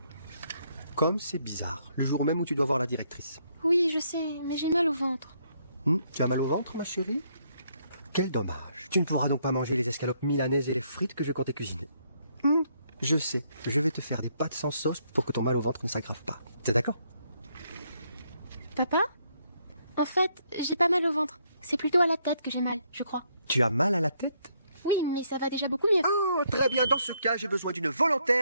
Comme c'est bizarre, le jour même où tu dois voir la directrice. Oui, je sais, mais j'ai mal au ventre. Tu as mal au ventre, ma chérie? Quel dommage. Tu ne pourras donc pas manger les escalopes milanaises et les frites que je comptais cuisiner. Je sais, je vais te faire des pâtes sans sauce pour que ton mal au ventre ne s'aggrave pas. T'es d'accord? Papa? En fait, j'ai pas mal au ventre. C'est plutôt à la tête que j'ai mal, je crois. Tu as mal à la tête? Oui, mais ça va déjà beaucoup mieux. Oh, très bien. Dans ce cas, j'ai besoin d'une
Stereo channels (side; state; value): both; inverted; correlation -0.72